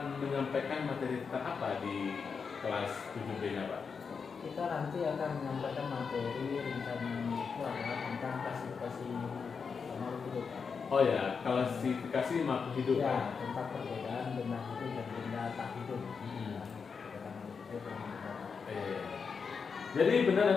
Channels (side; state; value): right; quieter; 5.6 dB